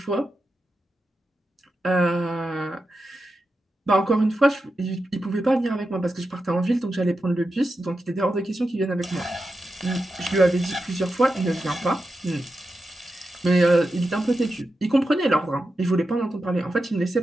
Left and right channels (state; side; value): normal; both; correlation 0.89